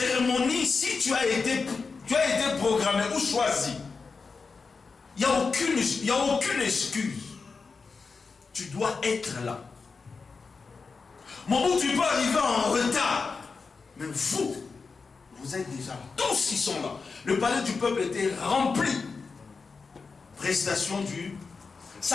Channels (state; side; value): quieter; right; 4.7 dB